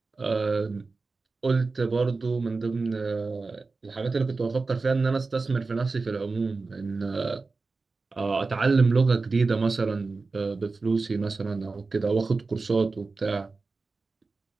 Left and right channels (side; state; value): left; quieter; 4.0 dB